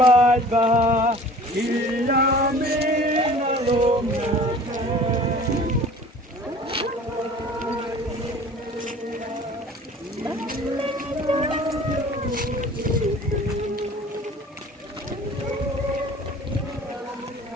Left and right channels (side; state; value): both; normal; correlation 0.46